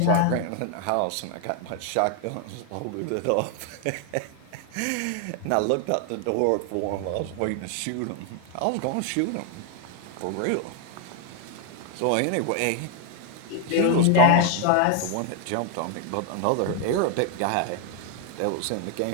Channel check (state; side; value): different; both; correlation 0.01